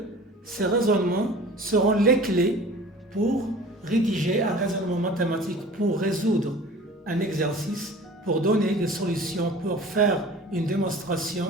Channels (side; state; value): both; normal; correlation 0.43